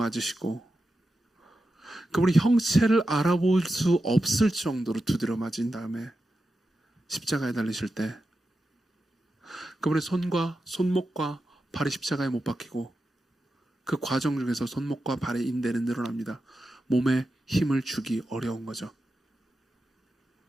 그분이 형체를 알아볼 수 없을 정도로 두드려 맞은 다음에 십자가에 달리실 때 그분의 손과 손목과 발이 십자가에 못 박히고 그 과정 중에서 손목과 발의 인대는 늘어납니다. 몸에 힘을 주기 어려운 거죠.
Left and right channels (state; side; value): normal; both; correlation 0.90